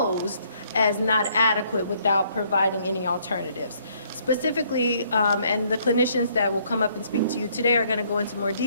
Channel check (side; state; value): both; inverted; correlation -0.66